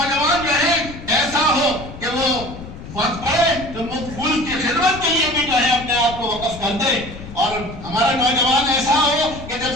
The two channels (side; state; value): left; noise; rumble, 13 dB below the sound